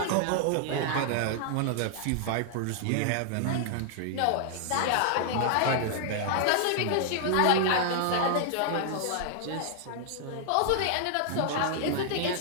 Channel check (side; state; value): both; different; correlation 0.00